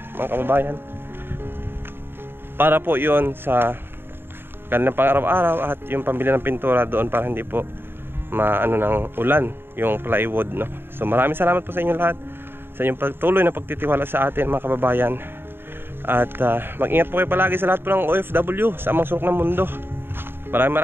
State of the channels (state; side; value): late; left; 0.10 ms